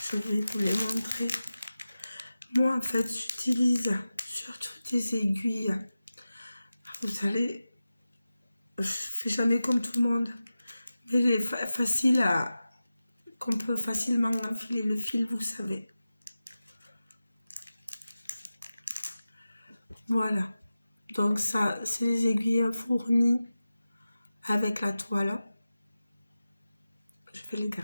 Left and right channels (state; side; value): inverted; both; correlation -0.95